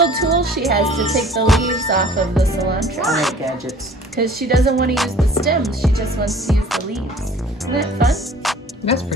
tool she has to take the leaves off of the cilantro. I like gadgets. Because she doesn't want to use the stems. She just wants to use the leaves. Isn't that fun? That's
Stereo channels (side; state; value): both; normal; correlation 0.49